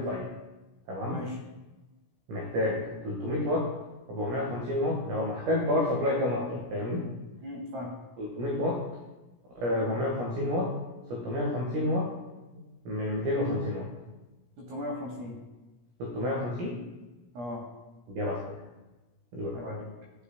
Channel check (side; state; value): left; late; 17 ms